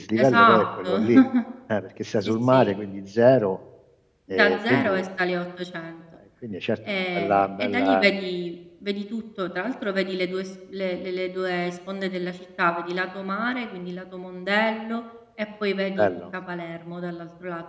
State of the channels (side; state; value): both; identical; correlation 1.00